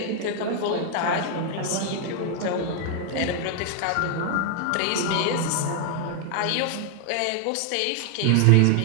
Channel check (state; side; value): different; both; correlation 0.00